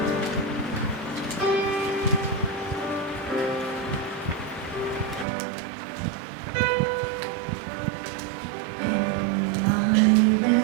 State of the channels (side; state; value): left; drops out; at 5.2 s